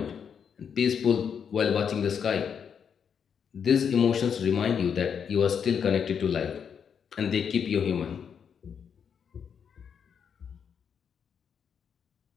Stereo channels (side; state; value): right; quieter; 7.3 dB